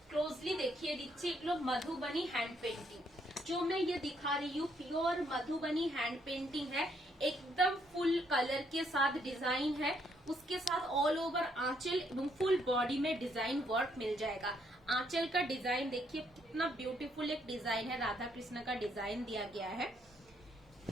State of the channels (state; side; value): normal; both; correlation 0.72